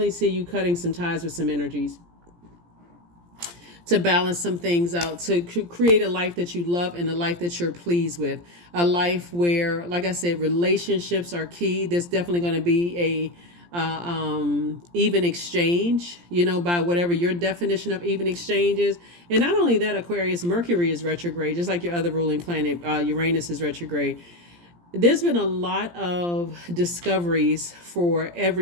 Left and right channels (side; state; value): left; late; 17 ms